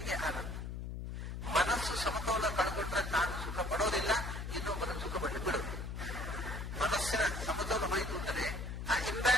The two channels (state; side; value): noise; left; hum, 6 dB below the sound